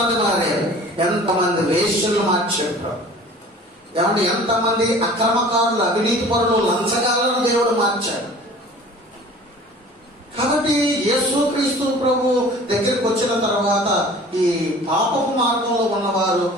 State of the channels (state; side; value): normal; both; correlation 0.45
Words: మారారు, ఎంతమంది వేశ్యలు మార్చారు. ఏమంటే ఎంతమంది అక్రమకారులు, అవినీతి పరులు, లంచగాలను దేవుడు మార్చాడు. కాబట్టి యేసుక్రీస్తు ప్రభు దగ్గరికి వచ్చిన తర్వాత ఈ పాపపు మార్గంలో ఉన్నవారు